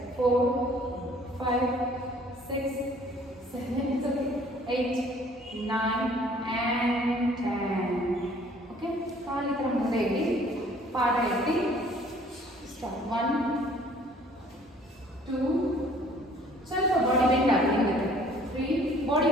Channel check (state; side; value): normal; both; correlation 0.56